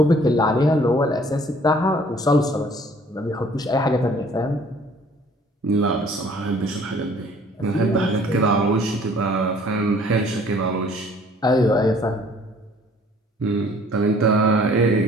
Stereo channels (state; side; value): normal; both; correlation 0.56